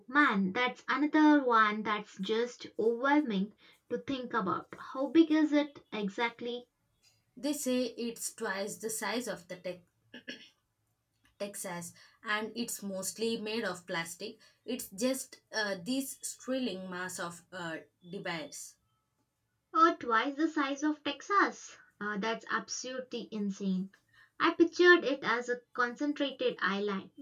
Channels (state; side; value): identical; both; correlation 1.00